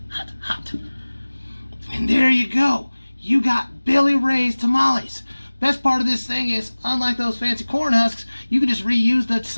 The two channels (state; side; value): inverted; both; correlation -1.00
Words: hot, hot. And there you go. You got Billy Ray's tamales. Best part of this thing is, unlike those fancy corn husks, you can just reuse the